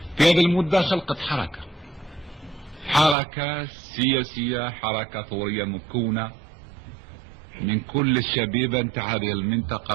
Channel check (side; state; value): left; drops out; at 3.2 s